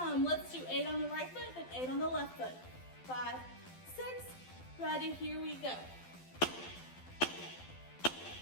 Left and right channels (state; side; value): late; right; 12 ms